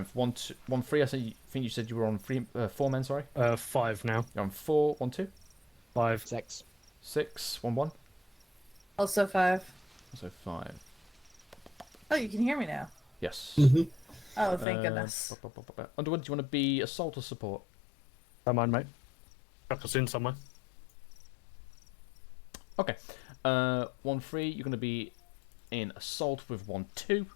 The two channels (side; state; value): right; drops out; at 14.7 s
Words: 1-3. I think you said you were on 4 men. Sorry. 5 now. You're on 4, 1-2. 5. 6. 6, 1-1. Also 5. Also 5. Oh, you can hear me now. Yes. Oh, thank goodness. Underwood, do you want to be assault or support? Don't mind, mate. Chuck us in somewhere. Okay. 1-3, you're going to be in assault with 1-2.